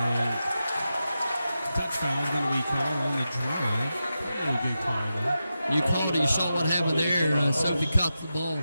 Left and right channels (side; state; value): both; inverted; correlation -0.90